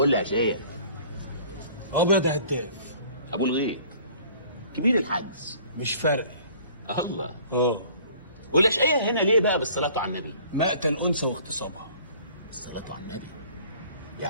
يا شيخ. ابيض يا هداف. ابو الغيط كبير الحجز. مش فارق. الله. والاشقيه هنا ليه بقى بالصلاه على النبي؟ مقتل انثى واغتصابها. الصلاه على النبي،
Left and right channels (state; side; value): inverted; both; correlation -0.51